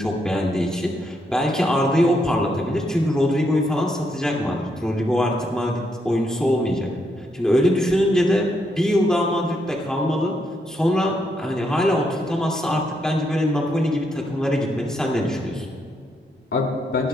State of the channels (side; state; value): both; normal; correlation 0.78